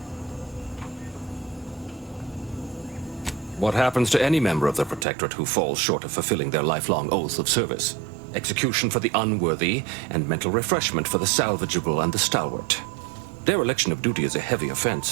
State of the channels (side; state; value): left; drops out; at 5.1 s